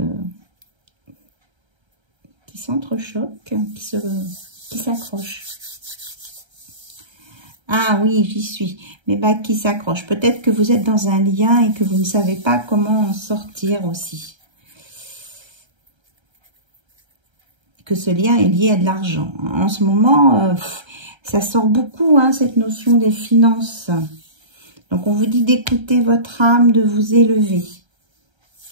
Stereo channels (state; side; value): late; left; 1.3 ms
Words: s'entrechoquent, qui s'accrochent. Ah oui, j'y suis. Mes bagues qui s'accrochent. Peut-être que vous êtes dans un lien et que vous ne savez pas comment en sortir aussi. Que ce lien est lié à de l'argent. En ce moment, ça sort beaucoup, hein, cette notion des finances. Donc, on vous dit d'écouter votre âme, de vous élever.